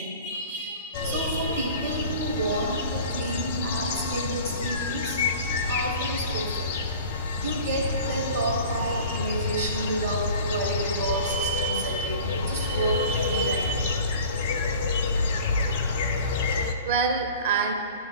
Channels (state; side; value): inverted; both; correlation -0.43